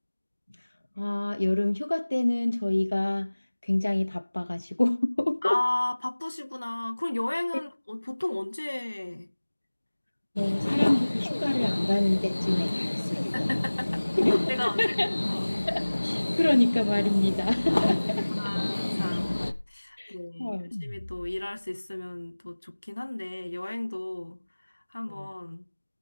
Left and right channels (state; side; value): inverted; both; correlation -1.00